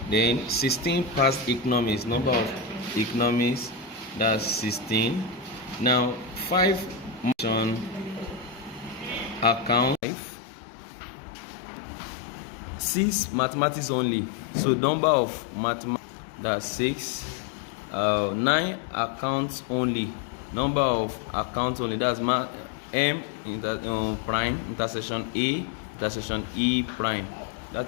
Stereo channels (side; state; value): right; drops out; at 10.0 s